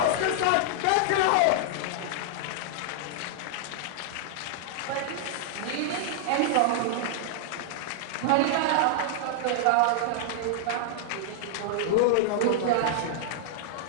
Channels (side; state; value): both; different; correlation -0.01